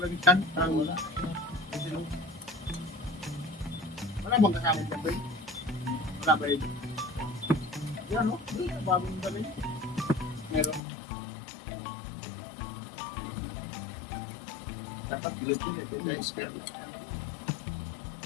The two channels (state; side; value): drops out; right; at 10.8 s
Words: lagitan. Wala. Wala bang kasama dyan ba? Wala ba yun? Yan o. Bagong dali. Meron. Dapat pilit-pilit. Guys, meron.